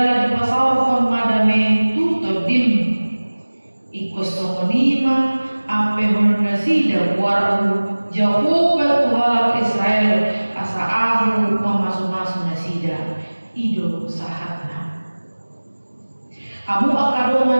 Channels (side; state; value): both; inverted; correlation -1.00